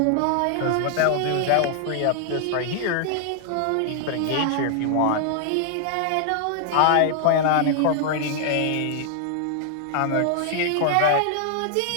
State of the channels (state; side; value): different; both; correlation 0.00